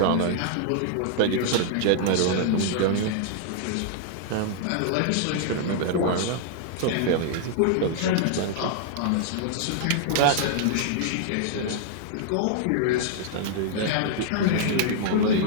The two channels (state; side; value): different; both; correlation -0.01